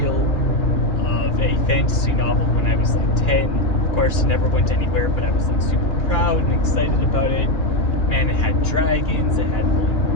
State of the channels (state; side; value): late; right; 2.4 ms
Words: of a fantasy novel when I was like 10. Of course, it never went anywhere, but I was like super proud and excited about it. Man, it had dragons, it had